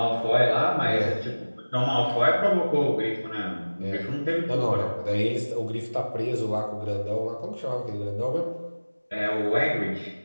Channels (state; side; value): inverted; both; correlation -1.00